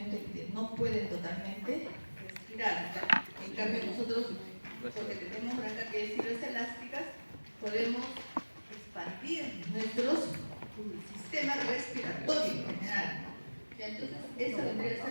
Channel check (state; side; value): inverted; both; correlation -1.00